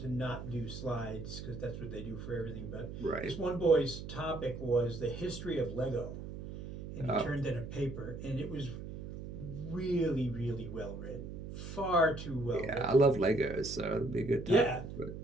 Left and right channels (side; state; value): right; noise; hum, 9 dB below the sound